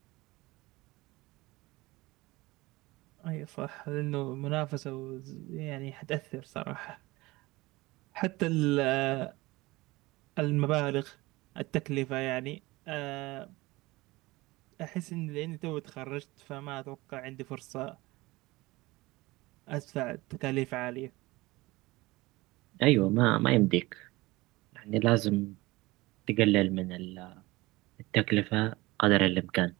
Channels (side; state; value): left; quieter; 20.9 dB